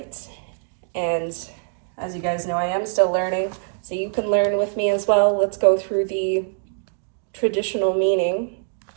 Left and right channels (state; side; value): silent; left; digital silence